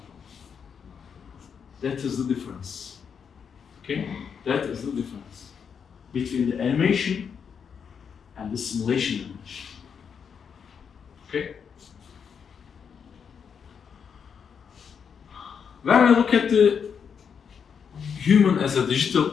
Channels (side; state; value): right; quieter; 6.9 dB